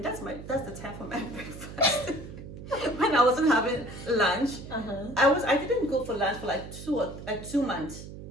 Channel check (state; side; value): noise; right; hum, 12 dB below the sound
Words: that's the time for my breakfast. When I wasn't having lunch, I didn't go for lunch for like 2 months.